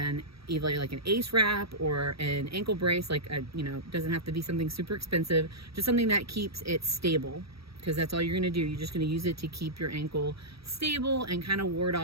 either like an ACE wrap or an ankle brace, doesn't have to be something super expensive, just something that keeps it stable, because that's all you're going to do. You're just going to use it to keep your ankle stable and kind of ward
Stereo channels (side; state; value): left; late; 0.76 ms